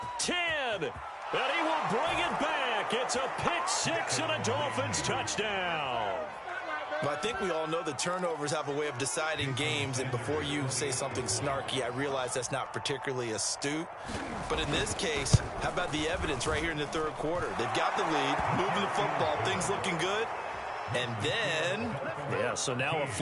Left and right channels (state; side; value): identical; both; correlation 1.00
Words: 10. And he will bring it back. It's a pick 6 and a Dolphins touchdown. Well, I think we all know the turnovers have a way of deciding games, and before you say something snarky, I realize that's not particularly astute. But in this case, how about the evidence right here in the third quarter? They've got the lead, moving the football, things looking good. And then... yeah, so now a